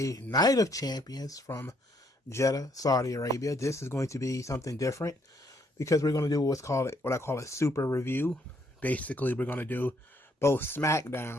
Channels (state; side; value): normal; both; correlation 0.70